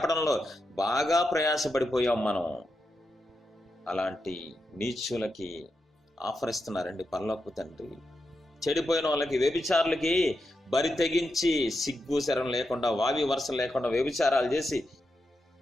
బాగా ప్రయాసపడిపోయాం మనం. అలాంటి నీచులకి ఆఫర్ ఇస్తున్నారండి పరలోకపు తండ్రి. చెడిపోయిన వాళ్ళకి, వ్యభిచారులకి బరి తెగించి సిగ్గు శరం లేకుండా, వావి వరుసలు లేకుండా వ్యభిచారాలు చేసి,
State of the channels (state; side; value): normal; both; correlation 0.87